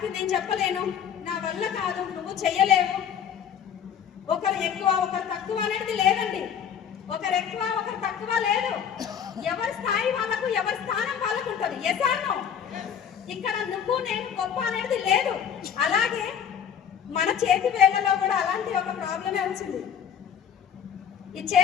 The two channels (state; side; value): quieter; right; 8.2 dB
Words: నేను చెప్పలేను, నా వల్ల కాదు, నువ్వు చెయ్యలేవు, ఒకరు ఎక్కువ ఒకరు తక్కువ అనేది లేదండి. ఒకరు ఎక్కువ ఒకరు తక్కువ లేదు, ఎవరి స్థాయి వాళ్ళకు, ఎవరి స్థానం వాళ్ళకు ఉంటుంది. Yes or no? ఇక్కడ నువ్వు నేను గొప్ప అనేది లేదు. అలాగే మన చేతి వేళ్లలో కూడా అలాంటి ఒక ప్రాబ్లమే వచ్చింది. ఈ